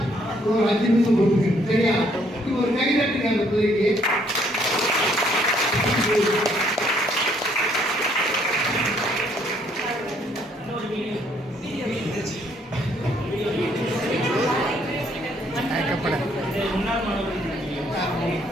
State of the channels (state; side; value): normal; both; correlation 0.67